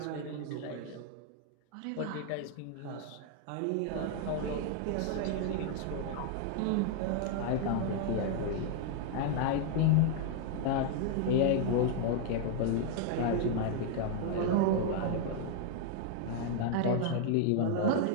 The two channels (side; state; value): both; different; correlation 0.00